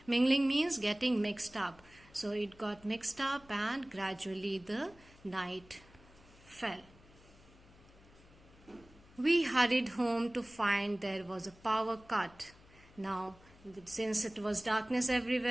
Mingling means getting mixed up. So it got mixed up and gradually the night fell. We hurried home to find there was a power cut. Now, since it was darkness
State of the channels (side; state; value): left; noise; hum, 25 dB below the sound